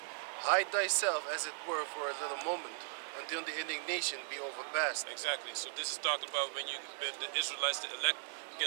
Hide thyself, as it were, for a little moment, until the indignation be overpast. Exactly. So this is talking about when the Israelites, the elect,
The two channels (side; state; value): left; silent; digital silence